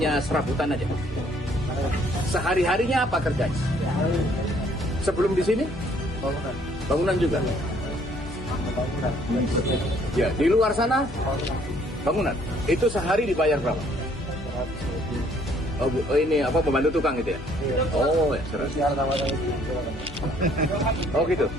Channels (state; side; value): noise; left; hum, 14 dB below the sound